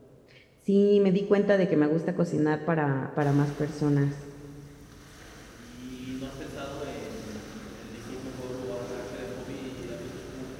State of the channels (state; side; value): identical; both; correlation 1.00